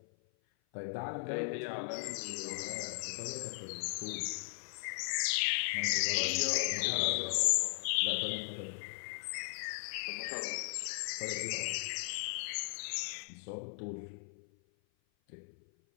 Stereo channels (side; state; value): right; silent; 53 dB below the other